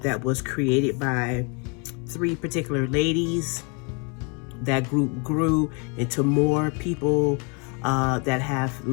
that was created by three particular ladies. That group grew into more people that have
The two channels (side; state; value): right; quieter; 34.6 dB